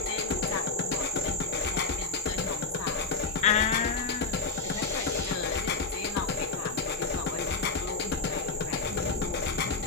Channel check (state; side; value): quieter; right; 4.0 dB